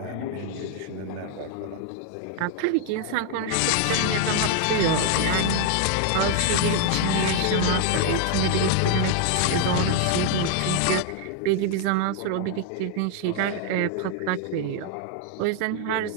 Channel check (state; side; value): different; both; correlation 0.00